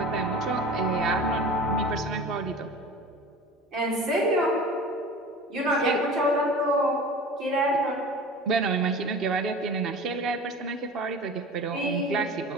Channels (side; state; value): both; normal; correlation 0.37